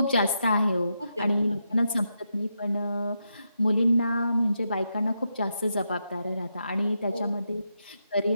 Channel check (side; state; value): both; inverted; correlation -0.84